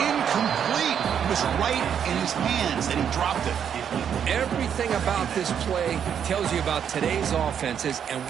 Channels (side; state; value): left; quieter; 8.3 dB